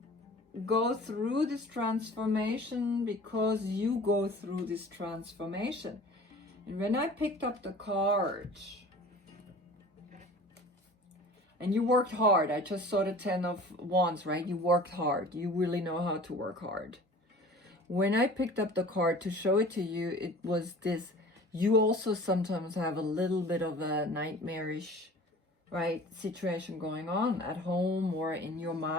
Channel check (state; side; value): normal; both; correlation 0.44